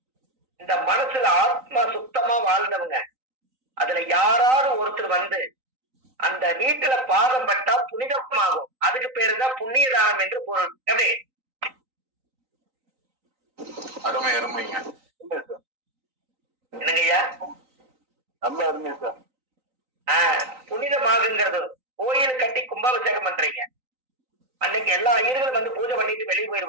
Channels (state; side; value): late; left; 3.9 ms